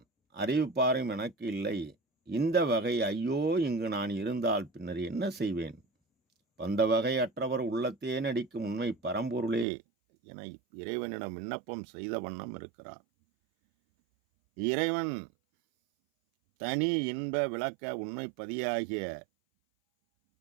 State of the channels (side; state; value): left; drops out; at 9.7 s